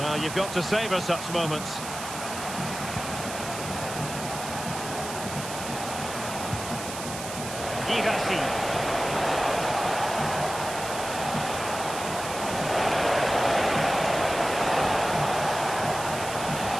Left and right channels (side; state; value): right; noise; hiss, 9 dB below the sound